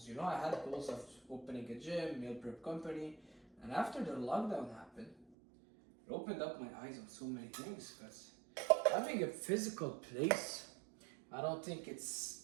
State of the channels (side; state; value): left; drops out; at 5.2 s